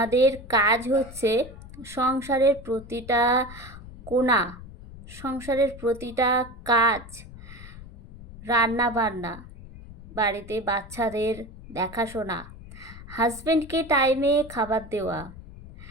কাজ হচ্ছে সংসারের প্রতিটা কোণা, সংসারের প্রতিটা কাজ, রান্না বান্না, বাড়িতে বাচ্চাদের দেখাশোনা, হাজব্যান্ডকে টাইমে খাবার দেওয়া,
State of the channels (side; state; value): left; noise; rumble, 16 dB below the sound